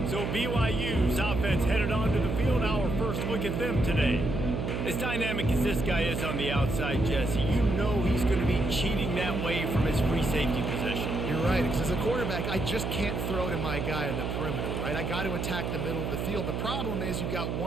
So BYU's offense headed onto the field. Our first look at them today. As dynamic as this guy is on the outside, Jesse, you know he's going to be cheating that way from his free safety position. You're right, because as a quarterback, I just can't throw to my guy on the perimeter, right? I got to attack the middle of the field. The problem is you've got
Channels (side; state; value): right; noise; hum, 2 dB below the sound